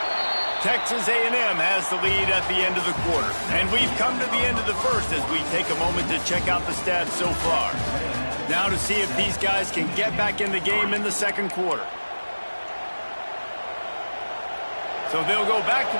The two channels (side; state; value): both; inverted; correlation -1.00